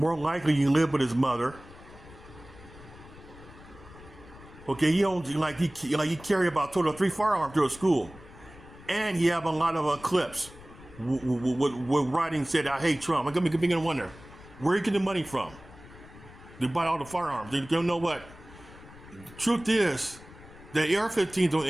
likely, he live with his mother. Okay, he owns he carry about total 3 firearms to a school, and he have a lot of clips. With writing said, "I hate Trump." I'm beginning to wonder, where you get the money from? They buy all the firearms. They don't know what. The truth is, the AR-15 don't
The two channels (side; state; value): left; noise; rumble, 19 dB below the sound